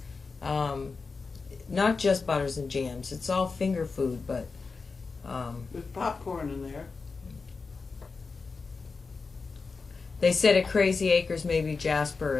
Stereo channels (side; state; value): right; quieter; 4.5 dB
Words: Not just butters and jams. It's all finger food, but There's popcorn in there. they said at Crazy Acres maybe Jasper